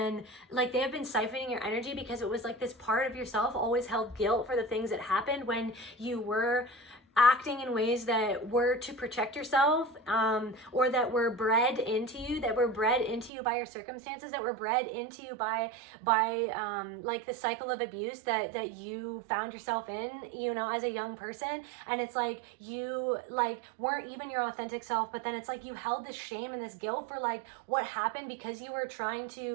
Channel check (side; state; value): left; drops out; at 13.3 s